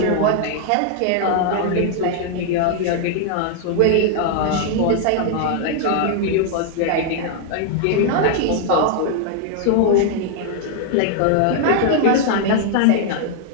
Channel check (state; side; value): different; both; correlation 0.00